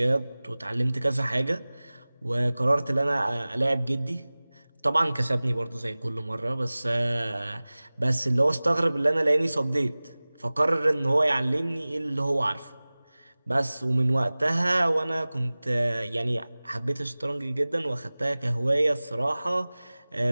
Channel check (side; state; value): both; inverted; correlation -0.99